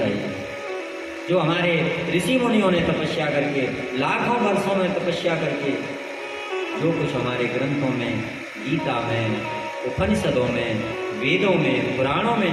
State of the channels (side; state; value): both; identical; correlation 1.00